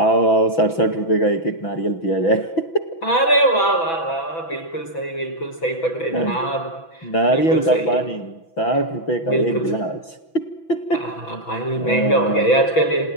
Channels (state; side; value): late; right; 6.0 ms